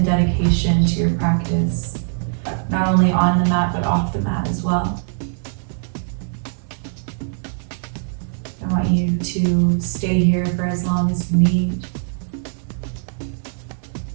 dedication to your practice, not only on the mat but off the mat as well. I want you to stay here for as long as you need.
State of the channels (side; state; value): left; silent; digital silence